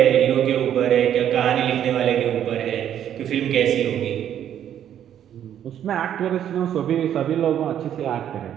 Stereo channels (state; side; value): quieter; left; 10.2 dB